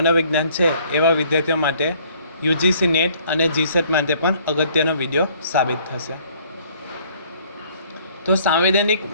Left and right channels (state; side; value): inverted; both; correlation -0.59